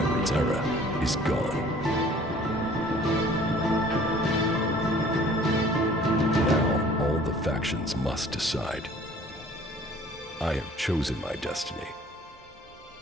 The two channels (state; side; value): normal; both; correlation 0.52